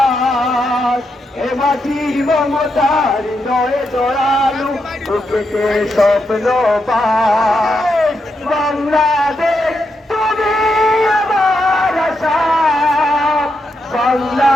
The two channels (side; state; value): both; normal; correlation 0.83